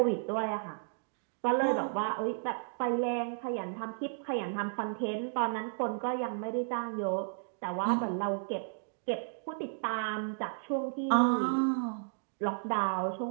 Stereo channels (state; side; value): silent; left; digital silence